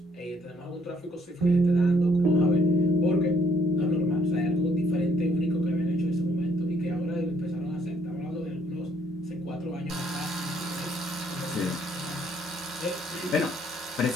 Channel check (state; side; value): normal; both; correlation 0.66